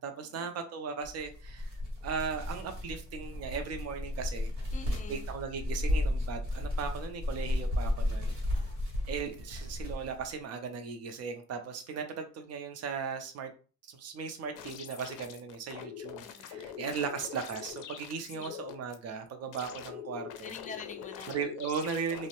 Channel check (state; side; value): normal; both; correlation 0.42